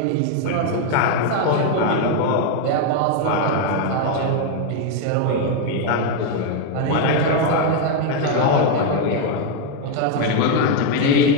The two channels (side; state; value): both; different; correlation 0.01